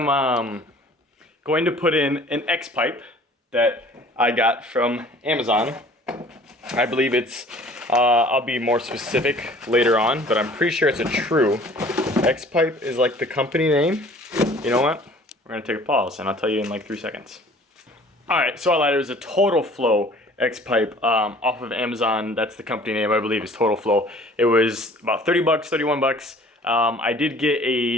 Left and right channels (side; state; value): both; normal; correlation 0.50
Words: going to put in an X pipe that I got from Amazon. I believe it's I'll be more specific later on, but I'm pretty sure it's a true. X pipe is like the company name. You know what? We're gonna take a pause and I'll tell you in like 3 seconds. All right, so I lied. It was a Total Flow X pipe off of Amazon. That's the company name, I believe, is Total Flow. It was about 30 bucks, 31 bucks. I did get